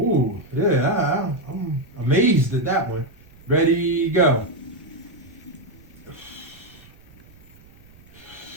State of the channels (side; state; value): right; noise; rumble, 25 dB below the sound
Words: yeah, I'm amazed at that one. Ready, go.